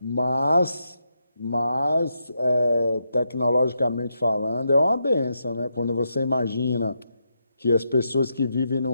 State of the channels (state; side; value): inverted; both; correlation -0.83